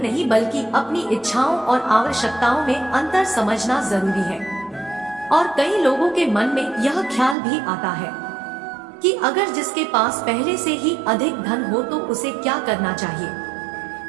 बल्कि अपनी इच्छाओं और आवश्यकताओं में अंतर समझना जरूरी है। और कई लोगों के मन में यह ख्याल भी आता है कि अगर जिसके पास पहले से ही अधिक धन हो तो उसे क्या करना चाहिए।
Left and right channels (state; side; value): drops out; left; at 7.4 s